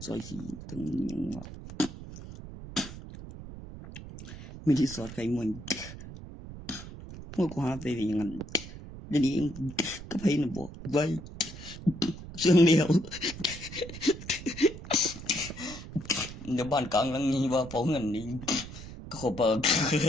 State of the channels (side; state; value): right; noise; rumble, 12 dB below the sound